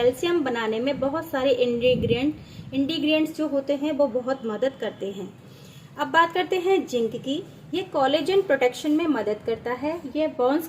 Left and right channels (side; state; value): both; identical; correlation 1.00